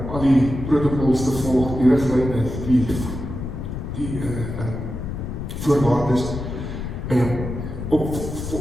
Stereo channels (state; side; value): noise; left; rumble, 6 dB below the sound